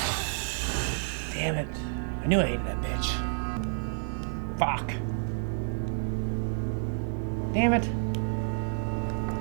Damn it. I knew I hated that bitch. Fuck. Damn it.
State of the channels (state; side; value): silent; left; digital silence